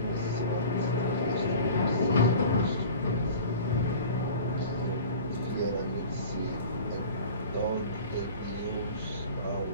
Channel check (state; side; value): inverted; both; correlation -0.41